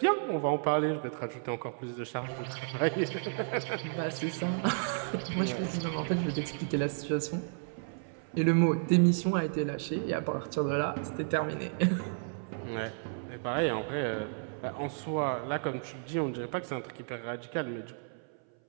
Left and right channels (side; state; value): left; silent; 56 dB below the other